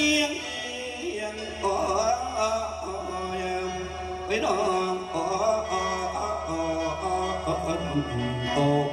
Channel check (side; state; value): both; identical; correlation 1.00